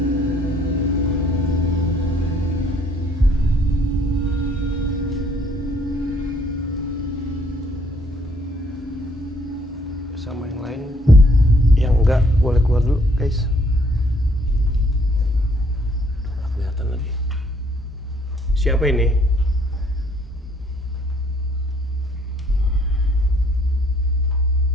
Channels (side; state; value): both; normal; correlation 0.64